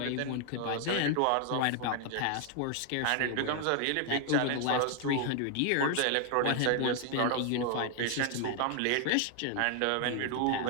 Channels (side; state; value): both; different; correlation 0.00